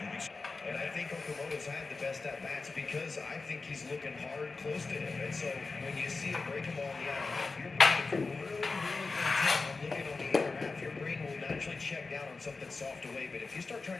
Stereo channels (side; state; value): right; quieter; 4.0 dB